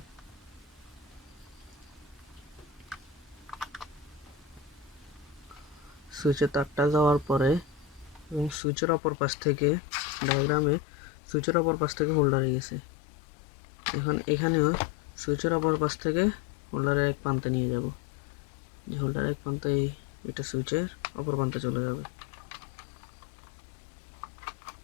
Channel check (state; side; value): drops out; right; at 8.6 s